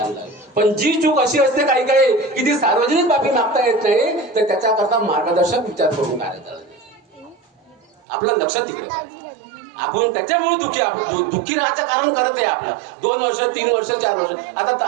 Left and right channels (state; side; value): drops out; left; at 7.9 s